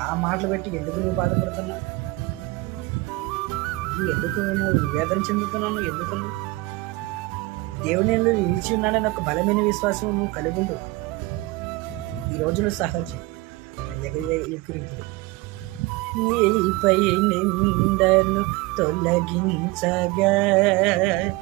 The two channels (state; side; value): quieter; left; 21.1 dB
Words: మాటలు పెట్టి ఎందుకు నువ్వు బాధపడుతున్నావు? ఎందుకు నువ్వు వేదన చెందుతున్నావు? ఎందుకు దేవుని నిలిచి ఉన్నాడని ఒక బలమైన విశ్వాసం నువ్వు కలిగి ఉండు. ఈ రోజులో సహజం ఎగిరింపులు. నీపై నిందను తొలగించగా